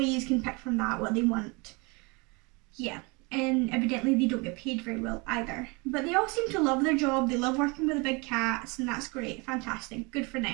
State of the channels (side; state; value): left; quieter; 28.7 dB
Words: can pick from that what they want. Yeah. And evidently they don't get paid very well either. But they all seem to love their job, they love working with the big cats, and that's great, fantastic, good for